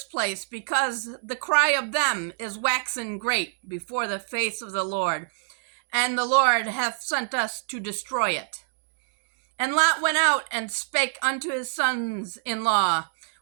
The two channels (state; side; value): silent; left; digital silence